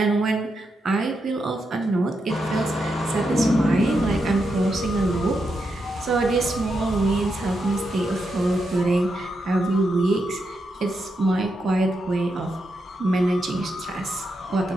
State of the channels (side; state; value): both; normal; correlation 0.84